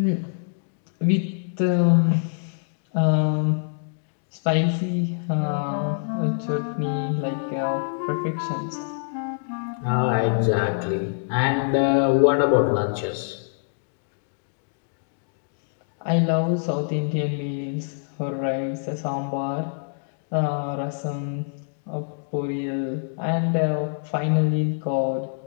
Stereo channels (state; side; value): silent; right; digital silence